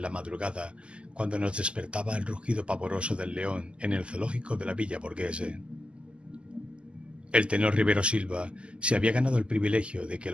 la madrugada, cuando nos despertaba el rugido pavoroso del león en el zoológico de la Villa Borghese. El tenor Rivero Silva se había ganado el privilegio de que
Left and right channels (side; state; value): left; late; 0.053 ms